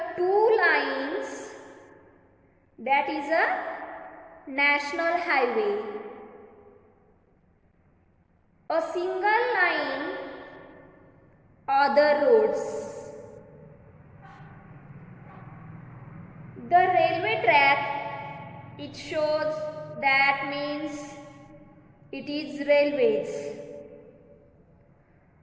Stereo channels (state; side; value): identical; both; correlation 1.00